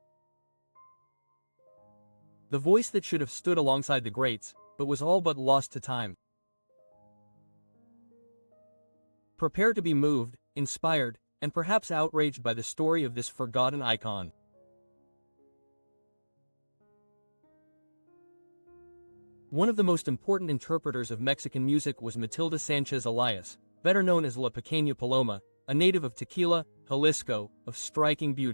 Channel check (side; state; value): both; inverted; correlation -1.00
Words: The voice that should have stood alongside the greats, but was all but lost to time. Prepare to be moved, inspired, and perhaps outraged by the story of this forgotten icon. One of the most important interpreters of Mexican music was Matilde Sánchez Elias, better known as La Pequeña Paloma, a native of Tequila, Jalisco, of striking